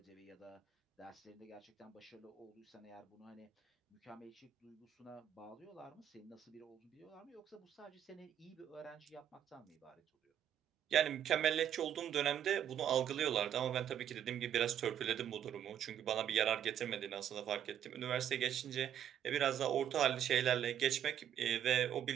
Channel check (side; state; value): left; quieter; 9.7 dB